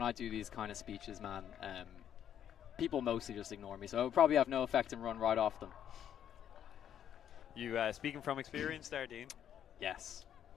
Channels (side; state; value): right; quieter; 9.7 dB